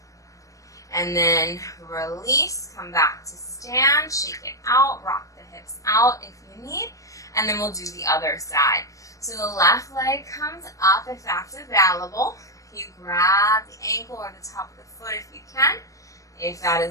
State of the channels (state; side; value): late; right; 0.16 ms